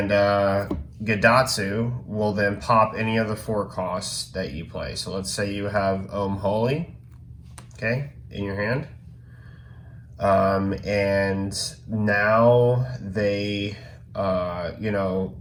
Gadatsu will then pop any of the 4 costs that you play. So let's say you have Holy, okay, in your hand. And now they,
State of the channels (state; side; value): identical; both; correlation 1.00